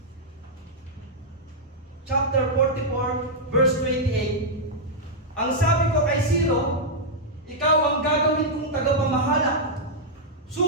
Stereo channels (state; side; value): normal; both; correlation -0.05